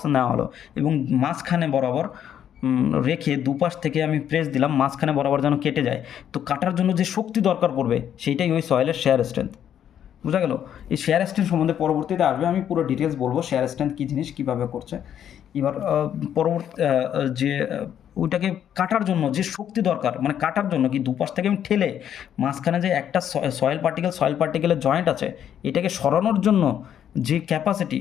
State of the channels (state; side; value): quieter; right; 9.7 dB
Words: নেওয়া হলো এবং মাঝখানে বরাবর রেখে দুপাশ থেকে আমি প্রেস দিলাম, মাঝখানে বরাবর যেন কেটে যায়। তো কাটার জন্য যে শক্তি দরকার পড়বে সেইটাই ওই সয়েলের শেয়ার স্ট্রেংথ। বোঝা গেল? এই শেয়ার স্ট্রেন্থ সম্বন্ধে পরবর্তীতে আসবে, আমি পুরো ডিটেলস বলবো শেয়ার স্ট্রেন্থ কী জিনিস, কীভাবে করছে। এবার পরবর্তী যে ওইটাকে কাটার জন্য যে শক্তি দরকার, মানে কাটার জন্য কি দুপাশ থেকে আমি ঠেলে মাঝখানে যে একটা সয়েল পার্টিকেলের জয়েন্ট আছে, এটাকে সরানোর জন্য যে capacity,